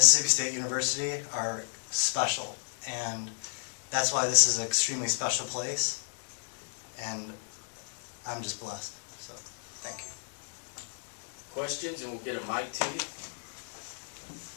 State University are special, and that's why this is an extremely special place, and I'm just blessed. So, thank you. Questions, and we'll get a mic to you.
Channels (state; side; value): silent; right; digital silence